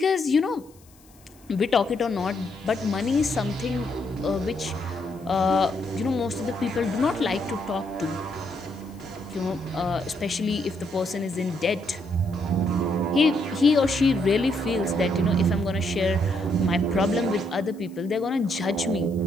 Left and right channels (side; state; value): left; noise; hiss, 28 dB below the sound